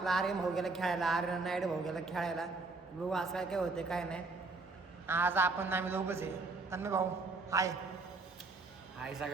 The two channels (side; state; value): left; quieter; 3.7 dB